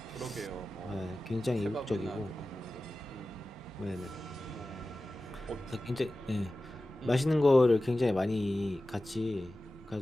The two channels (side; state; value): both; normal; correlation 0.95